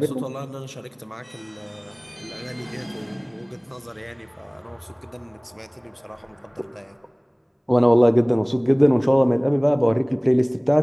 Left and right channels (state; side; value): identical; both; correlation 1.00